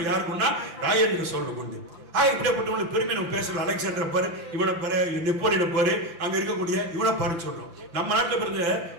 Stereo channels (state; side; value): late; left; 5.9 ms